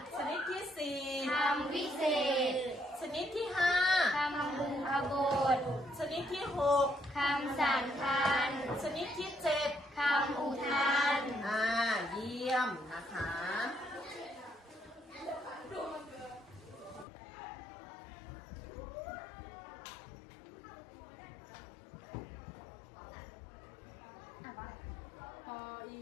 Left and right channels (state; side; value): drops out; right; at 17.1 s